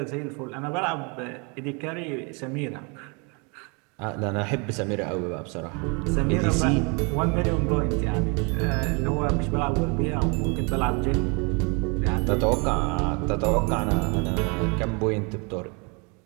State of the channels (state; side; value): quieter; left; 32.3 dB